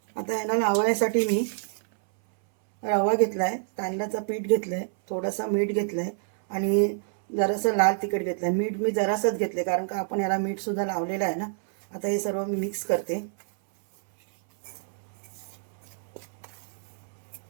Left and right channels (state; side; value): silent; left; 60 dB below the other